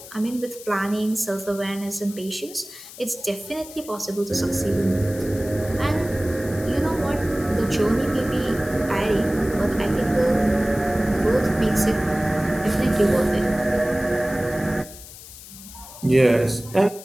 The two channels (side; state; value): left; noise; hiss, 16 dB below the sound